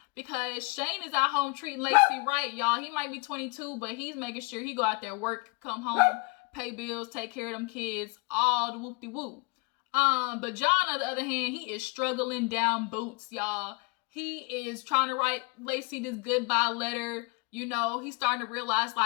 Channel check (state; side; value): quieter; right; 28.4 dB